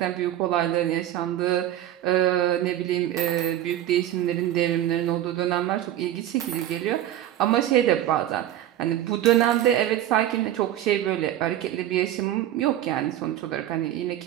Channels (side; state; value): left; quieter; 12.4 dB